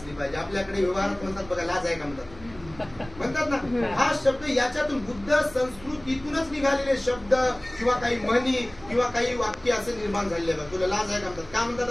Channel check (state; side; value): noise; right; rumble, 20 dB below the sound